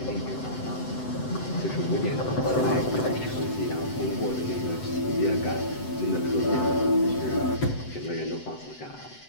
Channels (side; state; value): right; late; 7.9 ms